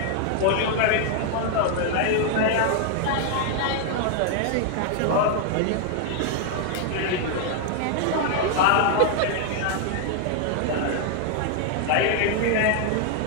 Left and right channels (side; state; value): both; different; correlation 0.00